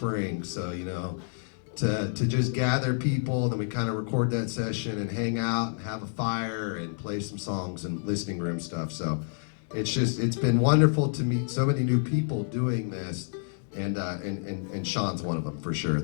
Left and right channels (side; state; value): right; silent; digital silence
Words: So, you know, to just gather people, then we kind of record that session and hang out and have a fire and play some songs and listening room stuff. So it's been wonderful to meet so many new people doing this. And Sean's one of them for sure.